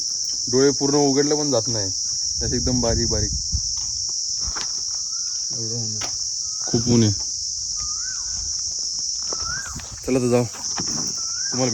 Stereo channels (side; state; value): both; identical; correlation 1.00